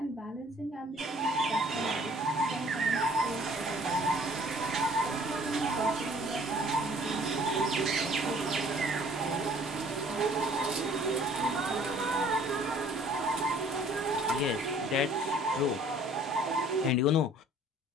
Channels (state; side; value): normal; both; correlation 0.55